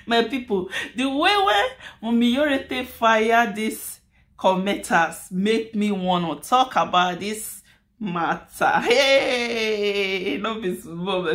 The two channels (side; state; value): both; identical; correlation 1.00